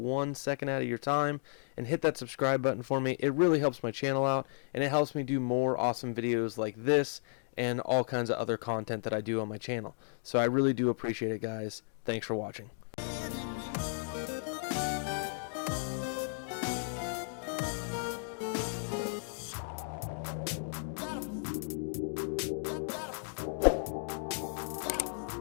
second out of your time and hit that subscribe button for me. It really helps my channel out, and it helps me do more awesome videos like this and all kinds of other content that I do on my channel. So I really do appreciate it, guys. Thanks for watching.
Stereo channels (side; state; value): right; silent; digital silence